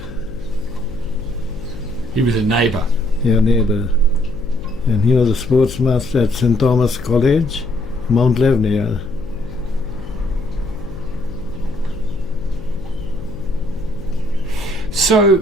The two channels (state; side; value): noise; left; hum, 14 dB below the sound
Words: He was a neighbour. Yeah, neighbour. And he was a sports master at St. Thomas College, Mount Lebanon.